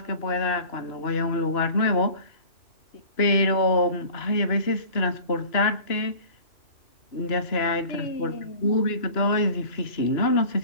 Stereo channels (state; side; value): late; right; 2.9 ms